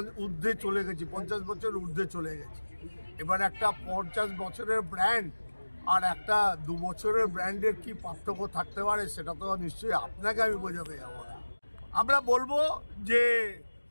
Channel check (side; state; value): both; inverted; correlation -1.00